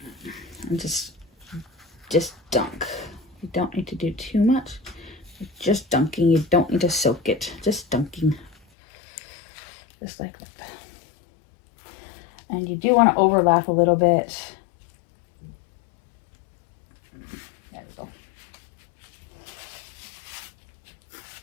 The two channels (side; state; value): right; drops out; at 8.6 s